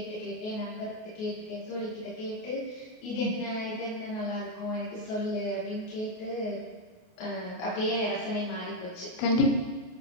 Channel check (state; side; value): late; right; 28 ms